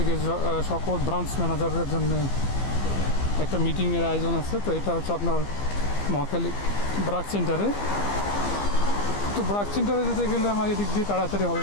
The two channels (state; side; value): late; right; 15 ms